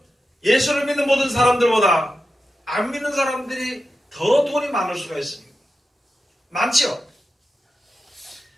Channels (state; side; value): normal; both; correlation 0.90